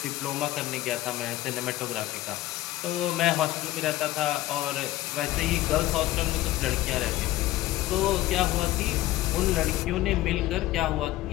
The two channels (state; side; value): quieter; right; 16.0 dB